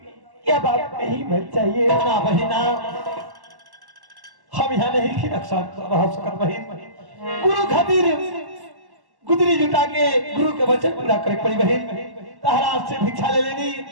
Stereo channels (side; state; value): left; late; 1.1 ms